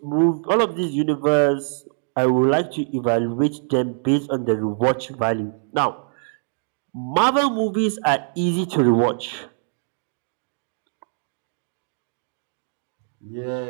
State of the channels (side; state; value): left; silent; digital silence